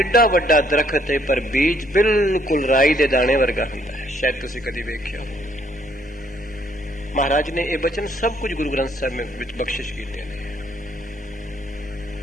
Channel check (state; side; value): normal; both; correlation 0.67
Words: वड्डा दरखत है पर बीज बिल्कुल राई दे दाने वर्गा हुंदा है। शायद तुसीं कदी वेख्या हो। महाराज ने ये वचन सब कुछ गुरु ग्रंथ साहब में बख्शिश कीते ने।